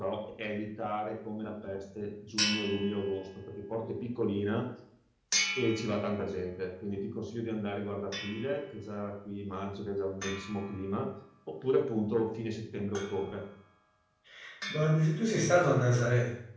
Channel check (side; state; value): both; identical; correlation 1.00